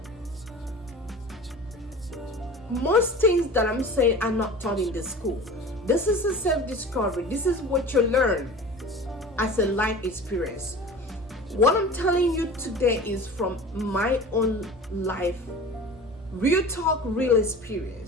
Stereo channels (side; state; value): both; normal; correlation 0.38